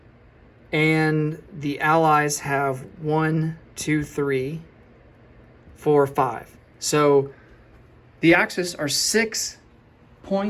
And the Allies have 1, 2, 3, 4, 5. So the Axis are 6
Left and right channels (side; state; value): both; identical; correlation 1.00